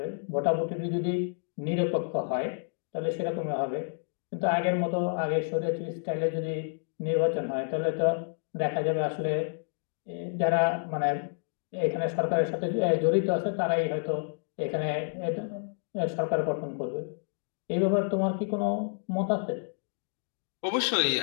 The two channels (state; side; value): silent; right; digital silence